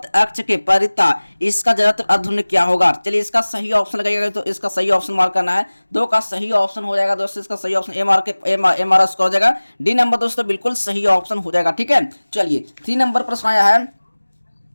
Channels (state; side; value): inverted; both; correlation -1.00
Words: अक्ष के परिता इसका जड़त्व अधुन्य क्या होगा। चलिए इसका सही ऑप्शन लगाइएगा, तो इसका सही ऑप्शन मार्क करना है। 2 का सही ऑप्शन हो जाएगा दोस्तों, इसका सही ऑप्शन एम आर स्कोर हो जाएगा। डी नंबर दोस्तों बिल्कुल सही ऑप्शन हो जाएगा। ठीक है, चलिए 3 नंबर प्रश्न आया है।